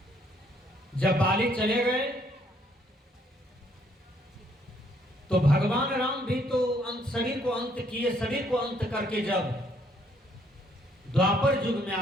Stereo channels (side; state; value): both; normal; correlation 0.67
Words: जब बाली चले गए तो भगवान राम भी तो शरीर को अंत किए। शरीर को अंत करके जब द्वापर युग में